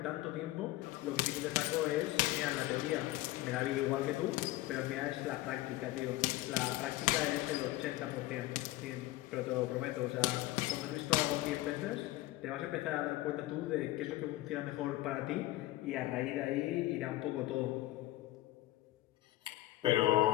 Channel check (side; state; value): right; quieter; 17.0 dB